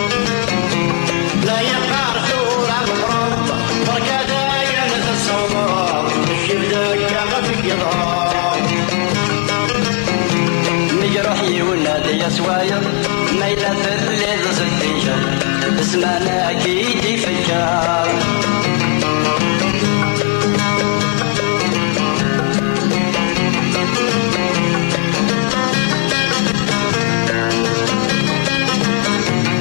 لا يقار ثورة مفروض وكذا ينس الصوضات الشيب دكا غزك يضار مجرحي ونادي يا سوايض ميلة ثلث ستيشة اسمعنا أكيد يفجر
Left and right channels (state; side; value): quieter; right; 36.9 dB